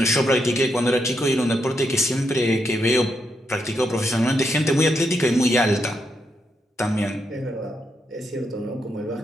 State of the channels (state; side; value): normal; both; correlation 0.81